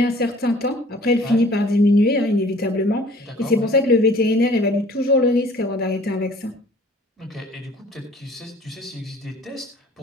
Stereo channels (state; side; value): normal; both; correlation 0.52